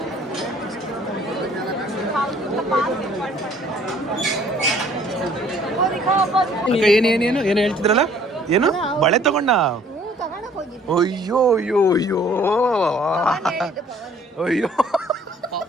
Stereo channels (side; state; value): both; normal; correlation 0.57